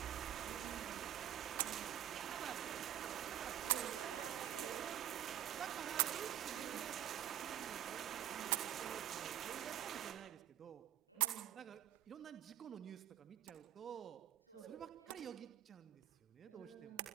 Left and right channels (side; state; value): left; quieter; 11.5 dB